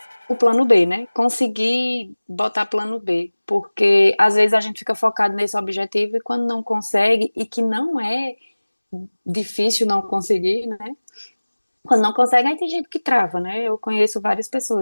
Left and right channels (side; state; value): both; inverted; correlation -1.00